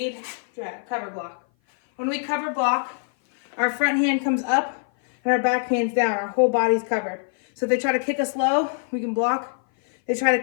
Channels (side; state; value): right; silent; 57 dB below the other